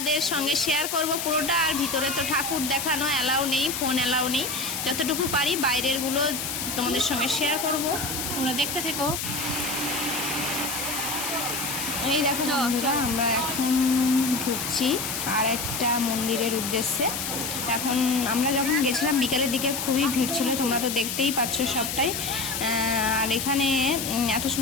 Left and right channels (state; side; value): noise; left; hiss, 3 dB below the sound